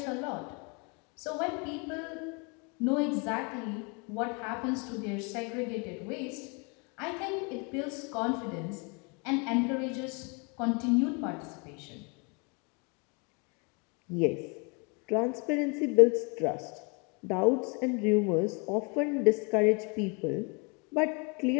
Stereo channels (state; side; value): quieter; right; 32.6 dB